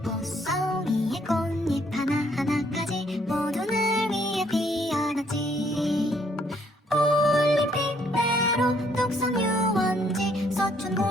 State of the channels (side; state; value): both; normal; correlation 0.67